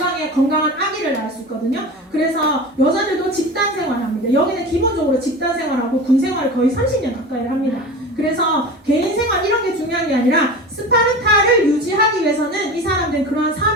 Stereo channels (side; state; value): both; normal; correlation 0.32